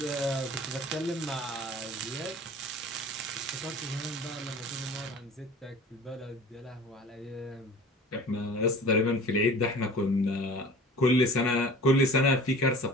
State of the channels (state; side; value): normal; both; correlation 0.42